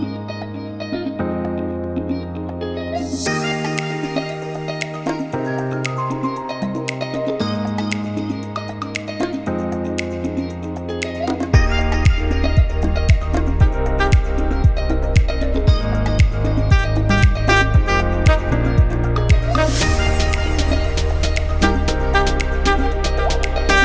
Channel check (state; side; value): identical; both; correlation 1.00